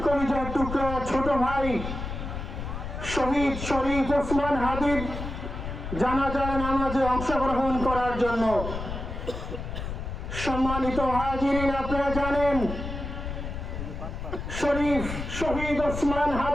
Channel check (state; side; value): noise; left; rumble, 6 dB below the sound